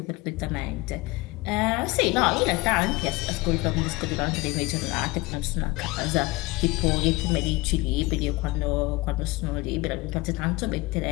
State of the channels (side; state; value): right; quieter; 22.1 dB